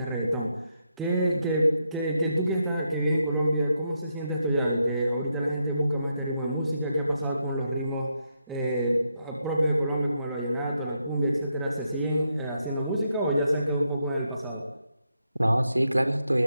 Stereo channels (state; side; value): inverted; both; correlation -0.80